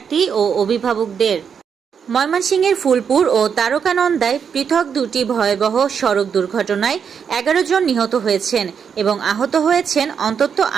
ও অভিভাবকদের। ময়মনসিংহের ফুলপুর ও তারকানন্দায় পৃথক দুটি ভয়াবহ সড়ক দুর্ঘটনায় 11 জন নিহত হয়েছেন এবং আহত হয়েছেন অন্তত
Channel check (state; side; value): quieter; left; 7.0 dB